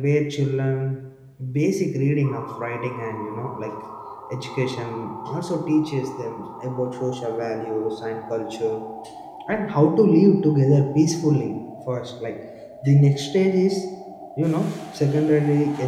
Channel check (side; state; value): both; identical; correlation 1.00